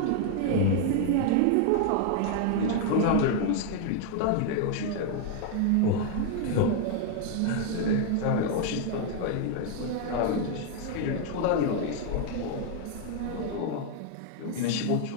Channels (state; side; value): different; both; correlation 0.00